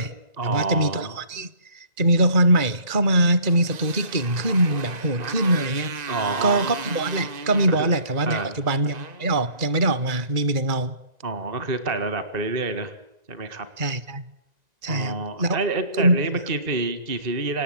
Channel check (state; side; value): late; left; 1.9 ms